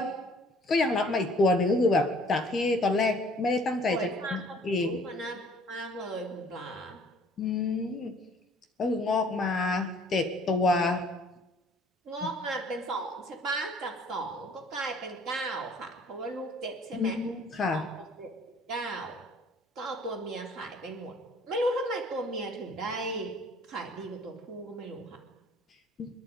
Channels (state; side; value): normal; both; correlation 0.55